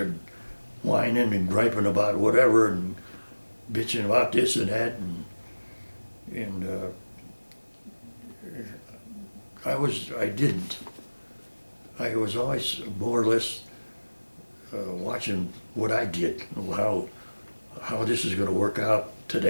whining and griping about whatever and bitching about this and that, and I was always more or less watching what I did, how this is going to work out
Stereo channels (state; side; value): inverted; both; correlation -1.00